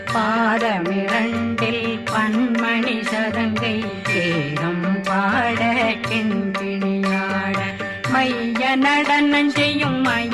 பாதமிரண்டில் பண்மணி சதங்கை கீதம் பாட கிண்கிணியாட மைய நடனம் செய்யும்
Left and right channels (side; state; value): both; identical; correlation 1.00